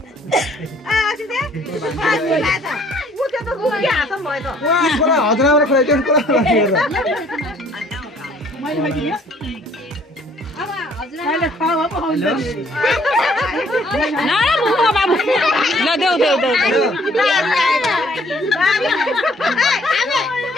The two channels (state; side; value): normal; both; correlation 0.60